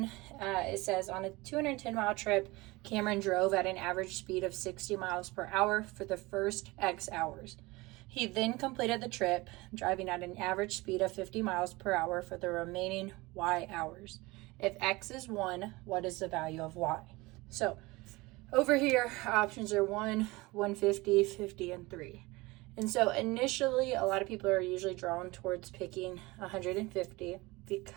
it says, on a 210-mile trip, Cameron drove at an average speed of 60 miles per hour for the first X hours. He then completed the trip, driving at an average speed of 50 miles per hour for the remaining Y hours. If X is 1, what is the value of Y? So over here, options are 1, 150, 50, and 3. And so initially, a lot of people are usually drawn towards picking 150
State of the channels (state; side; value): quieter; left; 22.3 dB